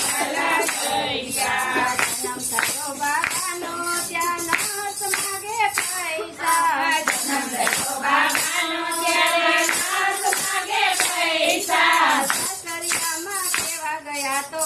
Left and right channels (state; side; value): identical; both; correlation 1.00